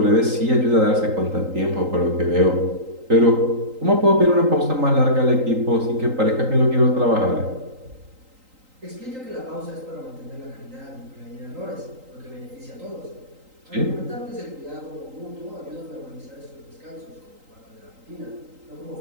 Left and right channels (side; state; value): left; late; 3.8 ms